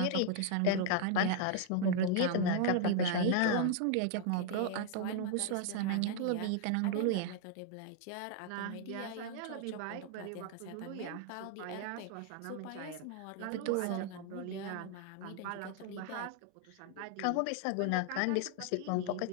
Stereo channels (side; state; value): both; different; correlation 0.00